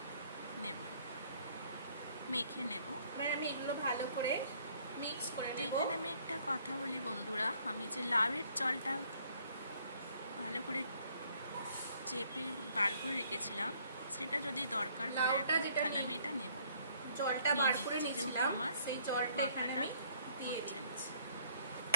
নেব, মেখে নেব। এবার আমি এগুলো ভালো করে মিক্স করে নেব। এখানে আমি একটা কথা বলি বন্ধুরা, আমি যে লাউয়ের জলটা ভালো করে চেপে বার করে রেখেছিলাম, সেটা যদি দরকার পড়ে তাহলে আমি এটা নেব। জলটা বার করে নিয়েছিলাম, সেই জলটা এখানে আমি দিয়ে দিচ্ছি।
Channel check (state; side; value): inverted; both; correlation -0.63